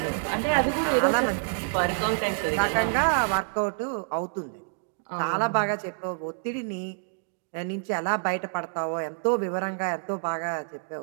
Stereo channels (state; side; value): silent; left; digital silence